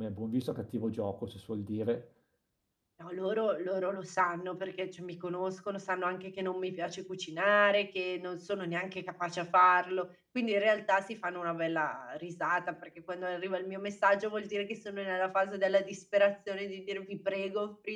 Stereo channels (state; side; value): identical; both; correlation 1.00